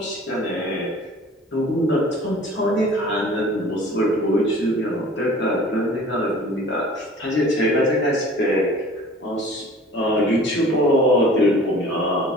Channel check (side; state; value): both; normal; correlation 0.46